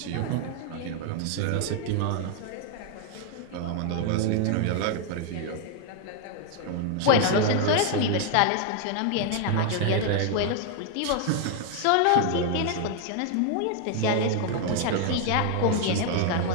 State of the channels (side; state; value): both; different; correlation 0.00